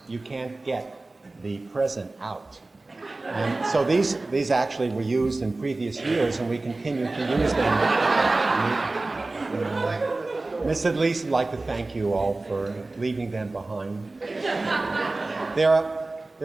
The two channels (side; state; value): left; quieter; 3.1 dB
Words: you can't get the present out. And so these actually were used in previous years, and we continue to use them. Miss Adlise would like to thank you all for leaving them behind.